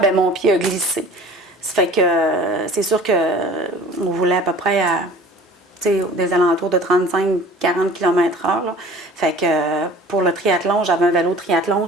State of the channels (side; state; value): both; normal; correlation 0.45